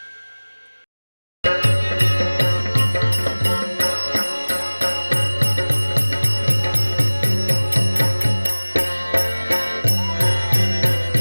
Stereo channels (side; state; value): both; inverted; correlation -1.00